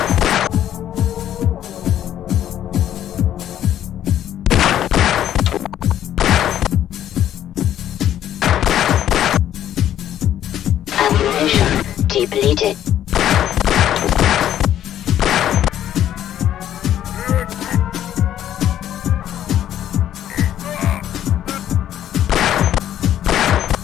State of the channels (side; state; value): right; quieter; 11.2 dB